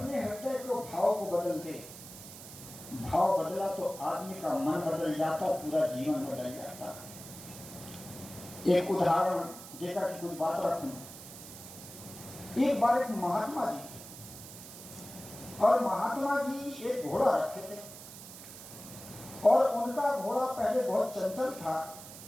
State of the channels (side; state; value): right; noise; hiss, 14 dB below the sound